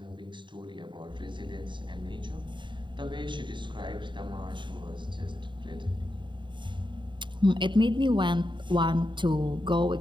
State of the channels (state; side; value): late; left; 0.23 ms